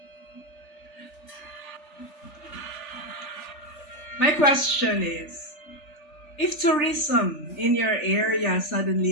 My question is, if tourism in your area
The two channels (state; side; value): late; right; 3.4 ms